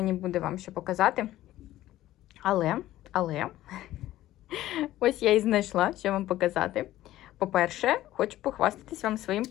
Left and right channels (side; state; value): right; quieter; 14.6 dB